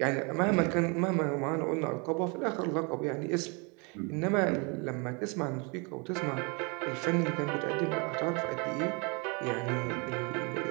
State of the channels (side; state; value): left; quieter; 31.9 dB